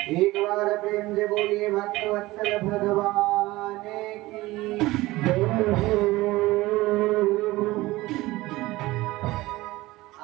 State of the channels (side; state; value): left; quieter; 19.1 dB